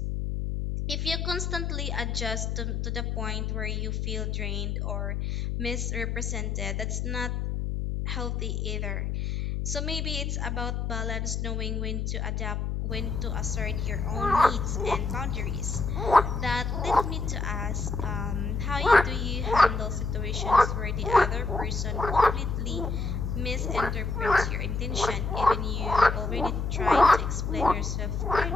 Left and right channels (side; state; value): left; noise; hum, 1 dB below the sound